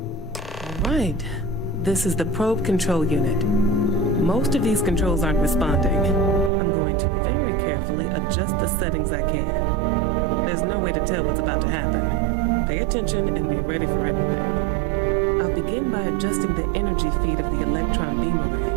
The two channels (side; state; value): left; drops out; at 6.5 s